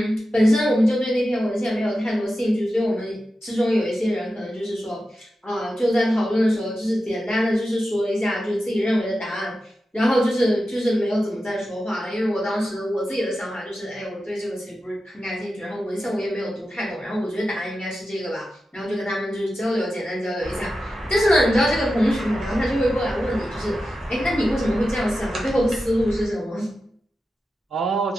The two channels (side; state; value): both; normal; correlation 0.92